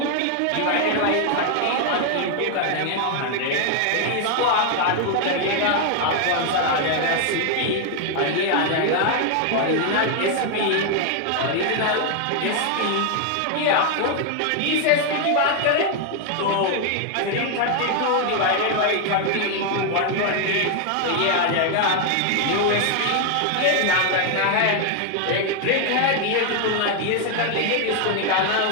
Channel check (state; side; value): different; both; correlation 0.00